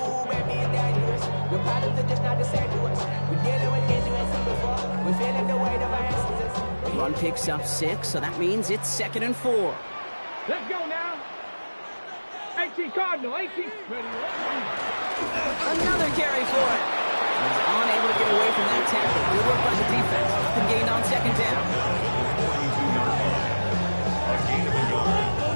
baby, it's dangerous. Your problems are just not the same to us. We're dealing with injuries before. We're feeling the weight of our ancestors. Run picks up 6, so that means it's 2nd and 4. Let's go now. 18 Cardinal, 18. Another carry for it. He's unable to get away from that tackle. Good work by the defense. Nothing gained on 2nd down. 42-yard line. A gain of a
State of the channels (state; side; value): inverted; both; correlation -1.00